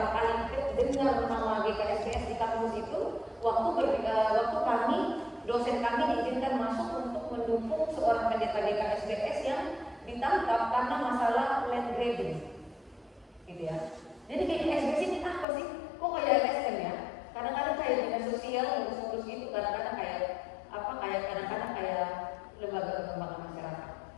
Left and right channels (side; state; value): right; drops out; at 15.5 s